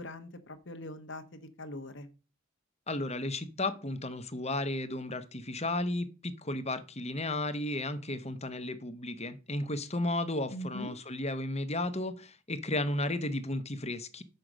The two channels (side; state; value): both; normal; correlation 0.42